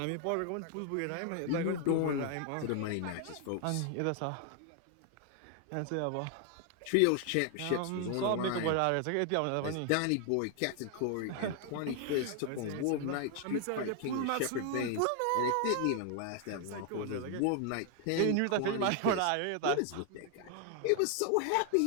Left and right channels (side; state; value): both; different; correlation 0.00